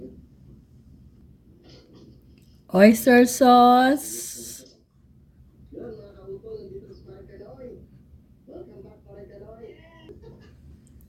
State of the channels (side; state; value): both; identical; correlation 1.00